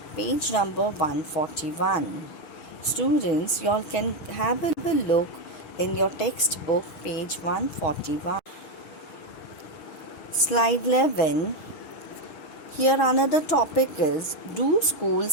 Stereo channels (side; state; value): right; late; 6.2 ms